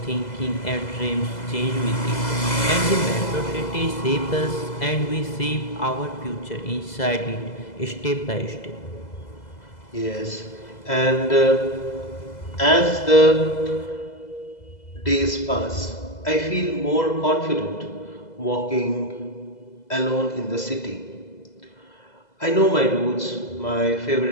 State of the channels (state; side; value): late; right; 2.0 ms